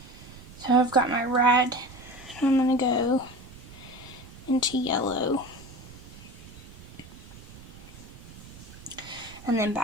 So I've got my red, and I'm going to go into yellow. and then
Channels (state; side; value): noise; right; rumble, 17 dB below the sound